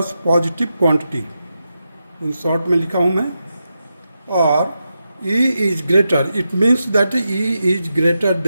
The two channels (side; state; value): both; inverted; correlation -0.88